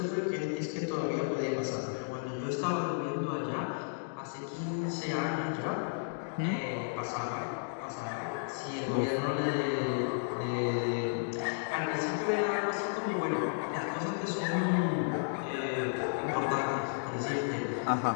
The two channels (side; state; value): right; silent; digital silence